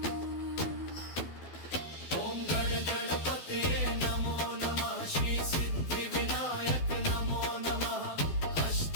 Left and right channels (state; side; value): late; right; 12 ms